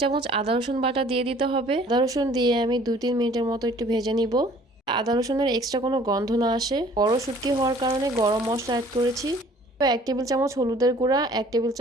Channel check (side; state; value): both; normal; correlation 0.53